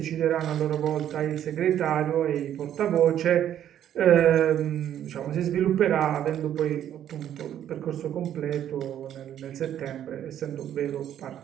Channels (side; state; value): left; quieter; 10.6 dB